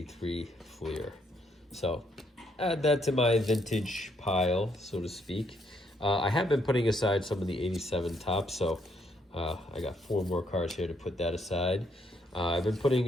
Fleer. So add that to my vintage pile, so to speak. I have been putting aside some of the 87 Topps, so I got 4 more cards here to put that aside. I've been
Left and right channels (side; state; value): both; normal; correlation 0.72